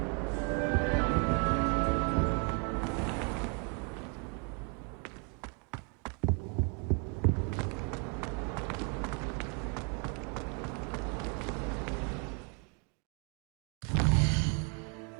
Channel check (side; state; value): left; quieter; 35.0 dB